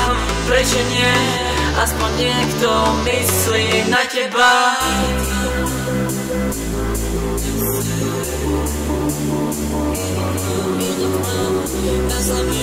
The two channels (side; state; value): both; identical; correlation 1.00